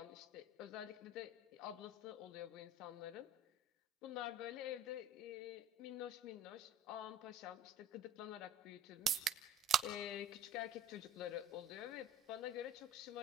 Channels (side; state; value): both; normal; correlation 0.46